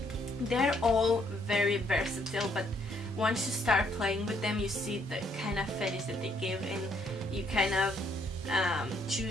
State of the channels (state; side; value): normal; both; correlation 0.69